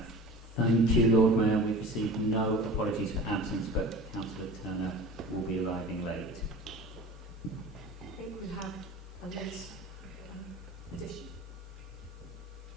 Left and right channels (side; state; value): both; normal; correlation 0.38